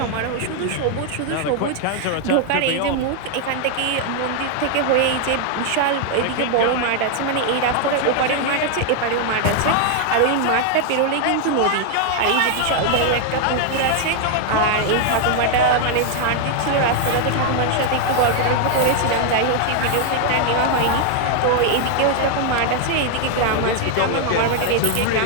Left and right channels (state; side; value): different; both; correlation 0.00